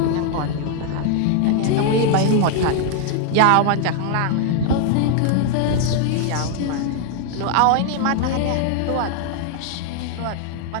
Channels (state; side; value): different; both; correlation 0.00